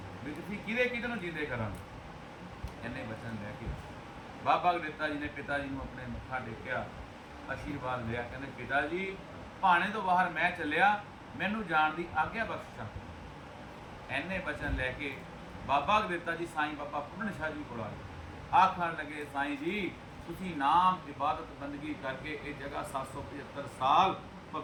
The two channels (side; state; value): both; identical; correlation 1.00